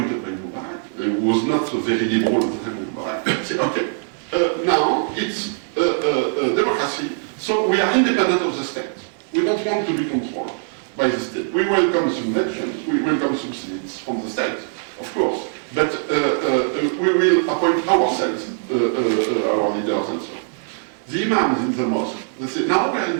by Mubarak, who was not so very liberal at the time of Mubarak, said, okay, now it's democracy, so we are independent of the state. We don't want to be controlled by the state. We welcome subventions, we welcome subsidies from the state, of course, but we will appoint ourselves, our leaders and so on. The imams in the mosque, they say, now we are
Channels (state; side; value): silent; left; 65 dB below the other